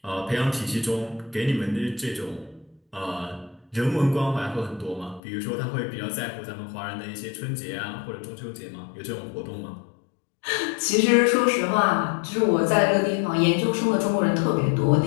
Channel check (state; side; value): drops out; right; at 5.2 s